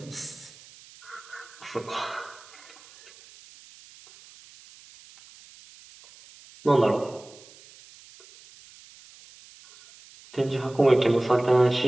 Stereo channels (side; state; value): right; noise; hiss, 23 dB below the sound